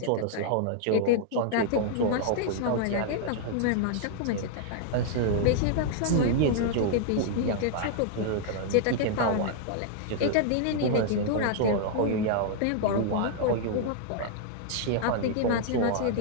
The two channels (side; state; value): both; different; correlation 0.00